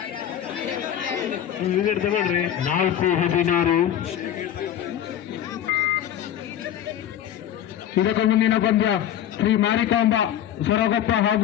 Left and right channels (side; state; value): right; quieter; 10.5 dB